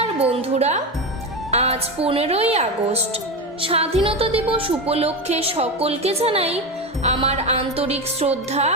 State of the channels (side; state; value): both; normal; correlation 0.18